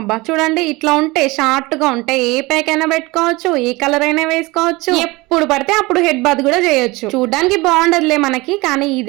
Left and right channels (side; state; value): left; quieter; 22.8 dB